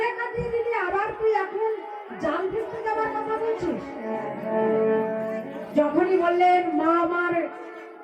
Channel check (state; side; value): identical; both; correlation 1.00